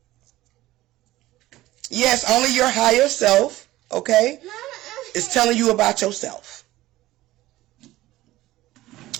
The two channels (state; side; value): quieter; left; 16.7 dB